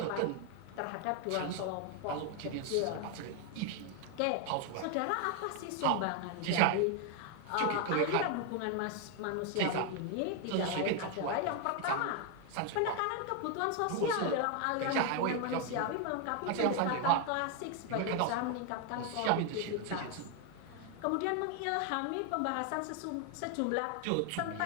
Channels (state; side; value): different; both; correlation 0.01